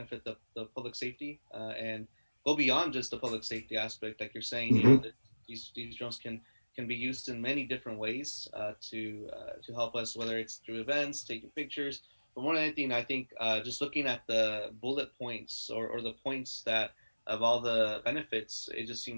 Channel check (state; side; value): inverted; both; correlation -1.00